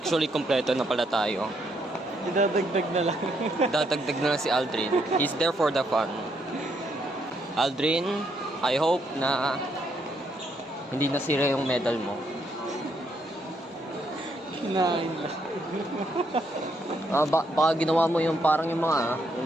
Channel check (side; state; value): both; normal; correlation 0.75